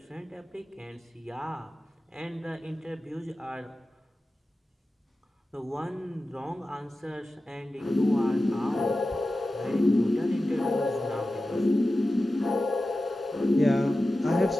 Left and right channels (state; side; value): normal; both; correlation 0.94